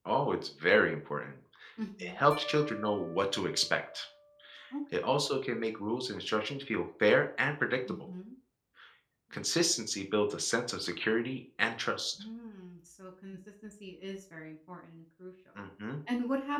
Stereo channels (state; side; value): identical; both; correlation 1.00